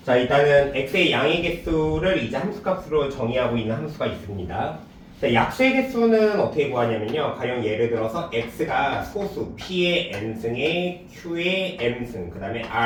자, 일단은 x의 양의 개수를 이제 함수값으로 정의하고 있는 함수가 있습니다. 자, 약수의 개수는 어떻게 구하냐면요. 가령 예를 들어서 x가 소수 p의 n승에 q의 m승, 그 다음에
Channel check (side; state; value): both; identical; correlation 1.00